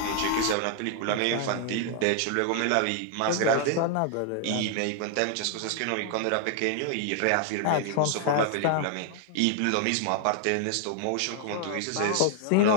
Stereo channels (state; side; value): different; both; correlation 0.00